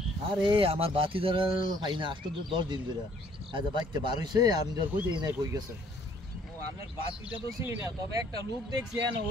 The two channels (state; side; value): normal; both; correlation 0.61